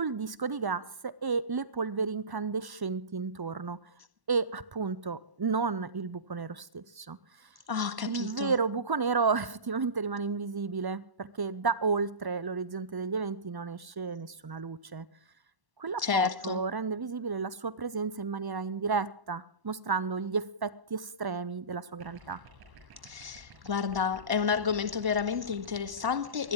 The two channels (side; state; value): left; late; 1.1 ms